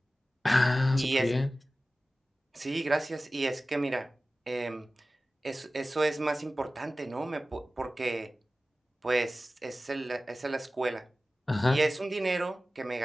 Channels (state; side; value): normal; both; correlation 0.96